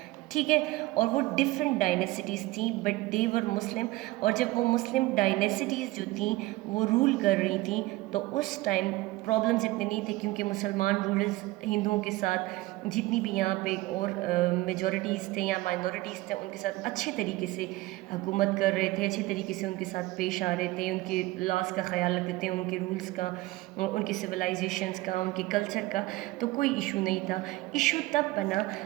ٹھیک ہے، اور وہ ڈفرینٹ ڈائنیسٹیز تھیں بٹ دے ور مسلم. اور جب وہ مسلم ڈائنیسٹیز جو تھیں وہ رول کر رہی تھیں تو اس ٹائم پرابلمز اتنے نہیں تھے، کیونکہ مسلمان رولرز ہندوؤں کے ساتھ جتنی بھی یہاں پہ اور میجورٹیز تھے یا مائنورٹیز تھے ان کے ساتھ اچھے طریقے سے حکومت کر رہے تھے، اچھے طریقے سے ان کے ساتھ پیش آ رہے تھے، ان کے لاس کا خیال رکھتے تھے، ان کے رولز کا، ان کی سویلائزیشنز کا، ان کے کلچر کا. تو کوئی ایشو نہیں تھا. ایشو تب بنا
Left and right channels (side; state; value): left; quieter; 19.4 dB